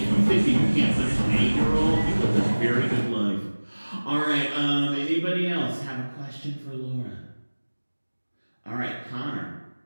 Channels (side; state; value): both; inverted; correlation -1.00